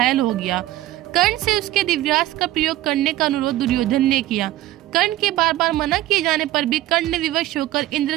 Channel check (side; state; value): left; quieter; 15.4 dB